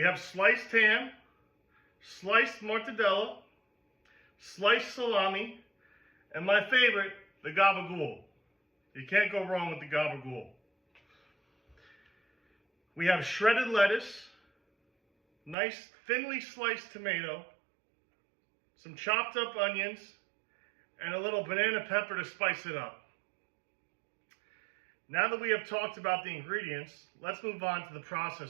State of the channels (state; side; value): drops out; left; at 15.6 s